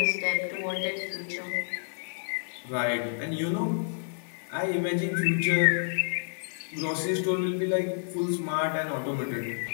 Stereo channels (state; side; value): silent; right; digital silence